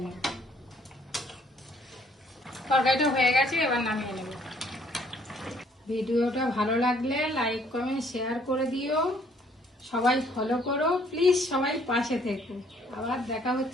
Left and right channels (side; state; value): both; normal; correlation 0.63